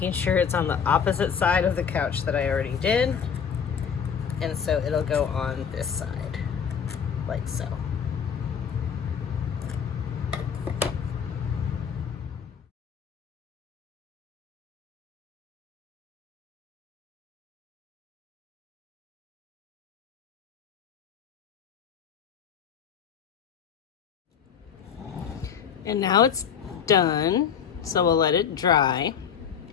sure it's on the opposite side of the couch that I already did. And so it'll go on this side, like so. And now it's done, so we'll let it dry.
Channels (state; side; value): quieter; right; 7.4 dB